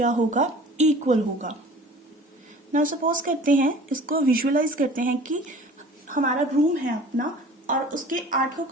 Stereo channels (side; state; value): both; normal; correlation 0.45